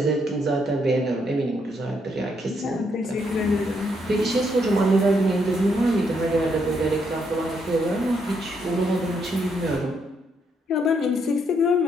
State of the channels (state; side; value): normal; both; correlation 0.75